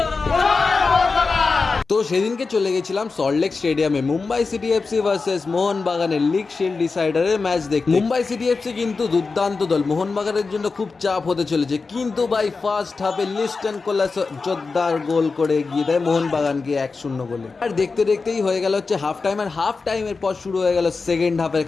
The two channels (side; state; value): right; quieter; 4.3 dB